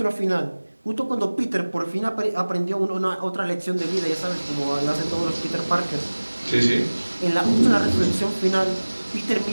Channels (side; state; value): both; inverted; correlation -1.00